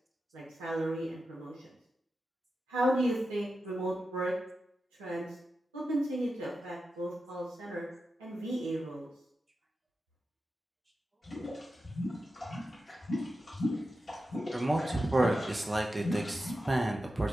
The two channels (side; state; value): both; normal; correlation 0.91